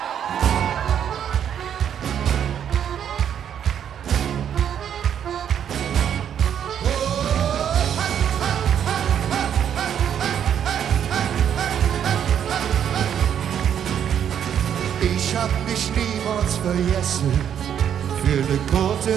Ich hab dich niemals vergessen. Für ne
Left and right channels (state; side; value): quieter; left; 9.0 dB